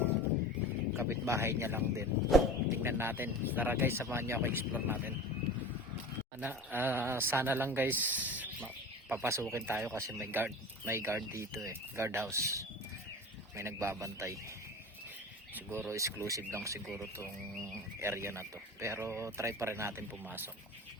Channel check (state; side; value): normal; both; correlation 0.33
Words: Kapitbahay niya lang din. Tingnan natin. Tara guys, samahan niyo ako, explore natin. Sana lang guys papasukin tayo kasi may guard dito guard house, may nagbabantay. Siguro exclusive lang siguro tong area na to, pero try pa rin natin pumasok